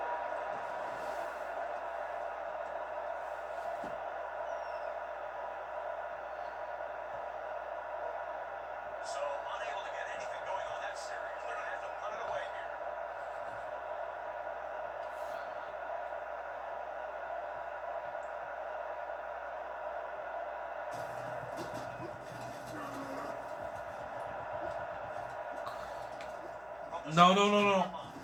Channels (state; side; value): noise; right; hum, 23 dB below the sound